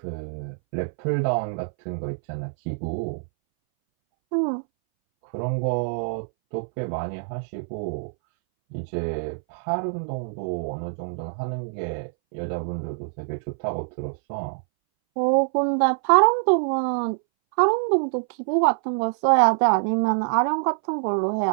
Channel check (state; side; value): silent; left; 61 dB below the other